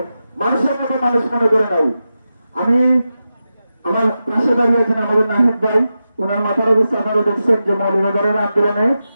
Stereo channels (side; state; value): both; inverted; correlation -0.91